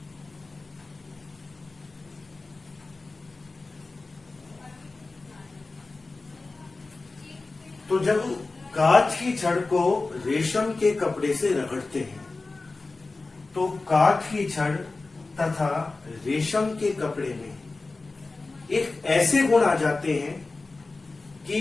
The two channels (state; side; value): quieter; right; 3.5 dB